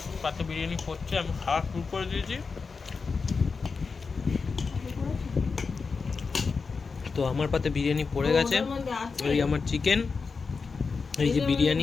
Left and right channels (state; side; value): quieter; right; 4.8 dB